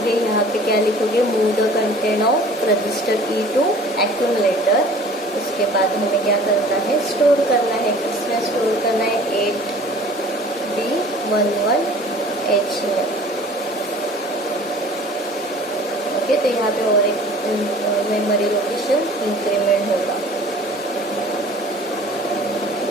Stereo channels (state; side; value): normal; both; correlation 0.48